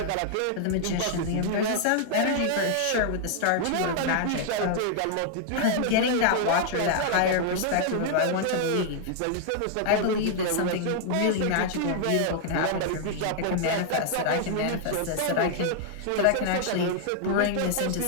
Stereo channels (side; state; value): both; different; correlation -0.01